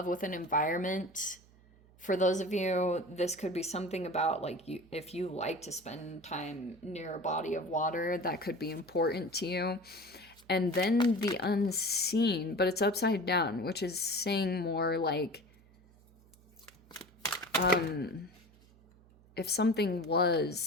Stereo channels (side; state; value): right; noise; hum, 27 dB below the sound